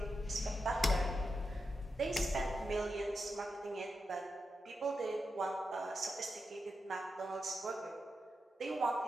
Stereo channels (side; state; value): both; normal; correlation 0.88